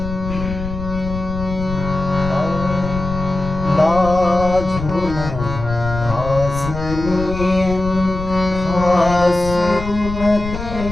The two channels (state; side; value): noise; left; rumble, 7 dB below the sound